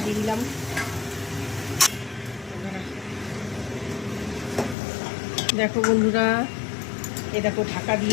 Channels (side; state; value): right; drops out; at 4.8 s